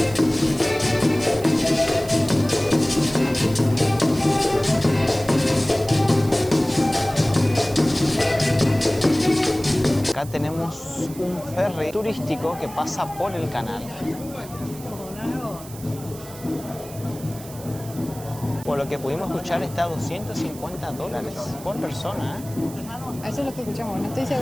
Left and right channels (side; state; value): right; noise; hiss, 17 dB below the sound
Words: Acá tenemos un ferry turístico que pasa por el canal. Por lo que pudimos escuchar está a $250 por persona. Eso es lo que escuchamos, no estoy